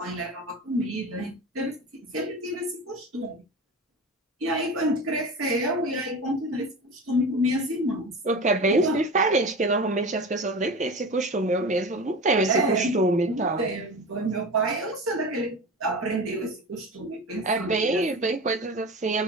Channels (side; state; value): both; normal; correlation 0.30